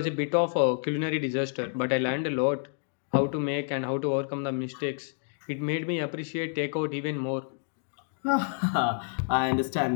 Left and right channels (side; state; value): right; silent; 59 dB below the other